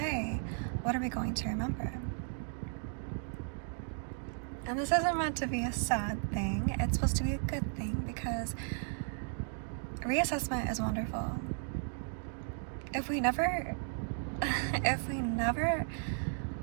what are we going to remember? And this isn't meant to be a sad thing, it's supposed to be a good thing, because reassessment is wonderful. If we never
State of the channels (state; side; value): silent; left; 54 dB below the other